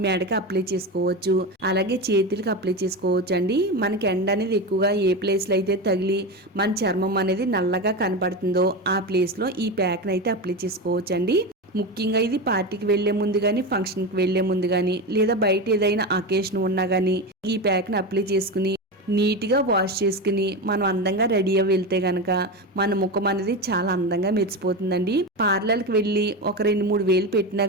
మెడకి అప్లై చేసుకోవచ్చు, అలాగే చేతులకి అప్లై చేసుకోవచ్చు అండి. మనకి ఎండ అనేది ఎక్కువగా ఏ ప్లేస్లో అయితే తగిలి మన చర్మం అనేది నల్లగా కనపడుతుందో ఆ ప్లేస్లో ఈ ప్యాక్ని అయితే అప్లై చేసుకోవచ్చు అండి. ముఖ్యంగా ఇది పార్టీకి వెళ్లే ముందు కానీ ఫంక్షన్కి వెళ్లే ముందు కానీ లేదా బయట ఏదైనా అకేషన్ ఉన్నా కానీ ఈ ప్యాక్ని అప్లై చేసుకుని నీట్గా వాష్ చేసుకుని మనం అందంగా రెడీ అయ్యి వెళ్తే గనక మన ముఖం అనేది చాలా అందంగా మెరిసిపోతుందండి. పార్లర్కి వెళ్ళి ఒక 2-3 వేలు పెట్టినా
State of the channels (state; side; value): normal; both; correlation 0.19